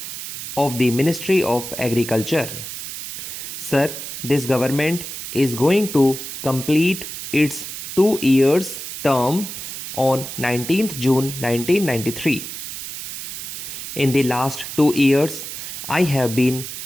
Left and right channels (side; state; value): right; noise; hiss, 8 dB below the sound